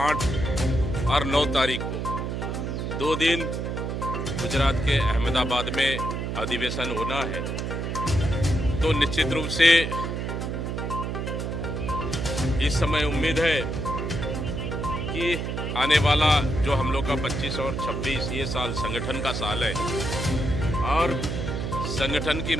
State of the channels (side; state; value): right; noise; hum, 3 dB below the sound